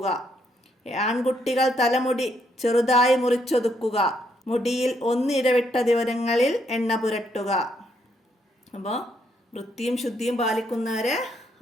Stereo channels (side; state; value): both; normal; correlation 0.74